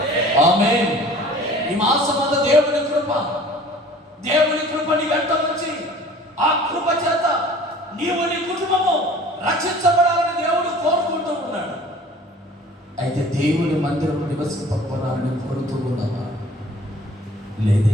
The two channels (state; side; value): normal; both; correlation 0.48